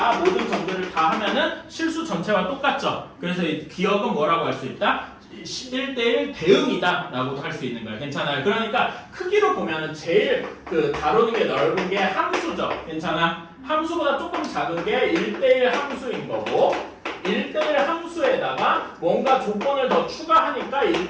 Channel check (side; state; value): both; identical; correlation 1.00